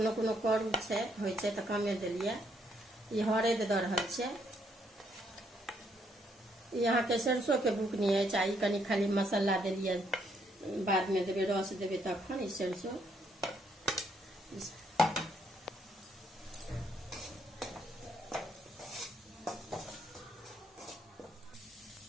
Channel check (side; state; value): both; normal; correlation 0.72